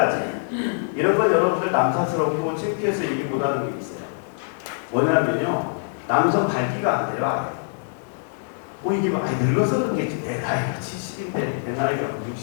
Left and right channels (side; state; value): right; silent; digital silence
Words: 이런 건 여러분들 남사스럽고 창피해서 얘기 못하는 게 있어요. 뭐냐면요. 남성 발기가 안 돼요. 이게 늙어서 그런 게 내 나이가 70인데 내 나이가